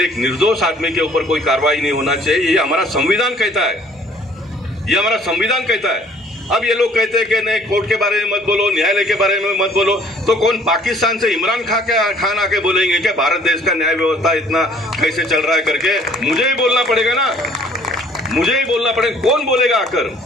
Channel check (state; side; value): normal; both; correlation 0.57